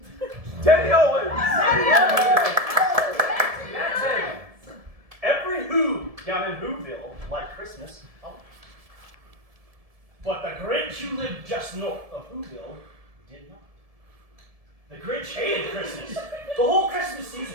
Teddy Owens! That's it. Every Who down in Whoville liked Christmas. Oh. But the Grinch who lived just north of Whoville did not. The Grinch hated Christmas. The whole Christmas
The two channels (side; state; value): left; late; 1.7 ms